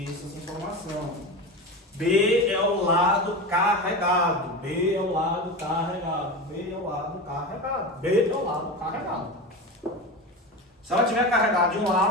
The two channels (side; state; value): both; normal; correlation 0.24